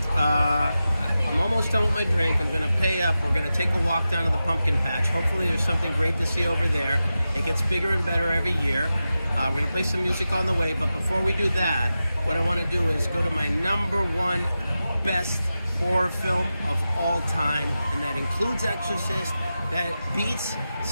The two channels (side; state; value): both; inverted; correlation -0.92